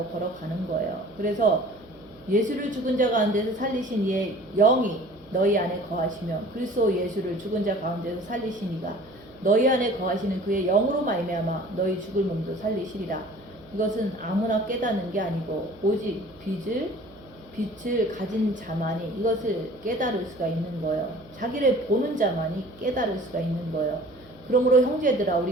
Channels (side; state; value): right; noise; hum, 27 dB below the sound